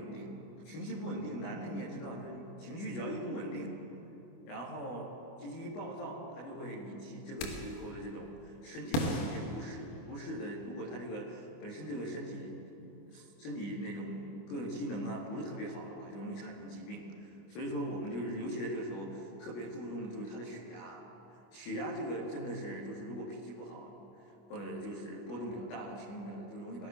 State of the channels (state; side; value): late; right; 25 ms